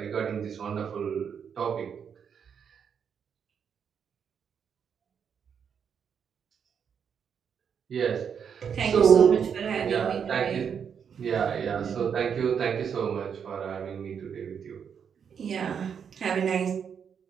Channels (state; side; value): quieter; left; 7.3 dB